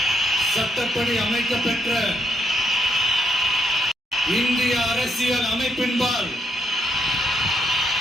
சட்டப்படி அமைக்கப்பெற்ற இந்திய அரசியல் அமைப்பின்பால்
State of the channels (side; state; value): both; normal; correlation 0.77